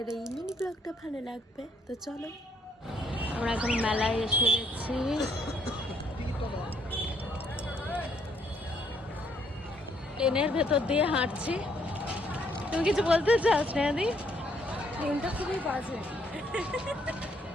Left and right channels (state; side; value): normal; both; correlation 0.70